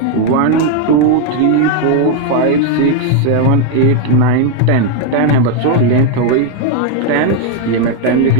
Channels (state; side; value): different; both; correlation 0.00